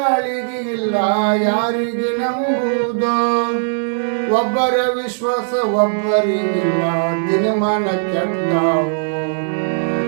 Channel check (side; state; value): left; silent; 64 dB below the other